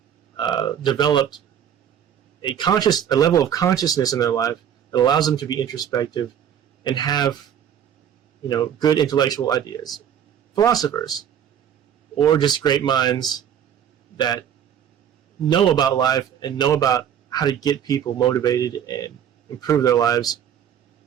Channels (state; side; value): quieter; left; 9.2 dB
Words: developed a level of consciousness in their life that allows them to be introspective and have, good intellectual ideas. Philosophers, or just great minds that know about life and know about how to get people motivated and improve their lives.